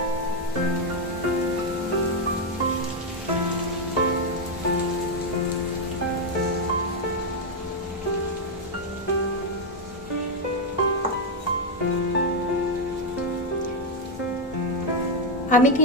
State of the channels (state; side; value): normal; both; correlation 0.02